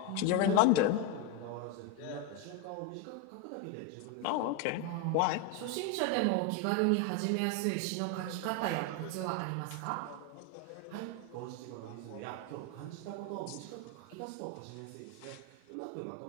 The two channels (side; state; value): both; different; correlation 0.02